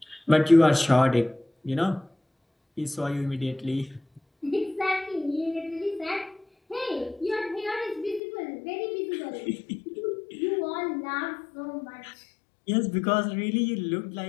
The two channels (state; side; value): drops out; right; at 8.2 s